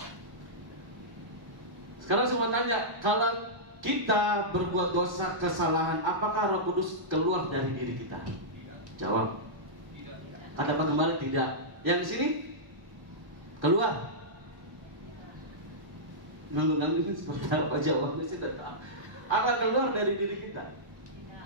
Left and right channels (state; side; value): late; left; 1.3 ms